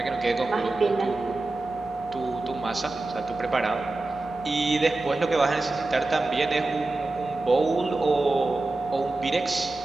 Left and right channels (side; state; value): left; quieter; 3.1 dB